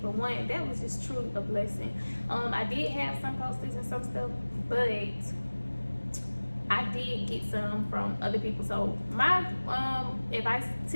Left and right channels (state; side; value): inverted; both; correlation -1.00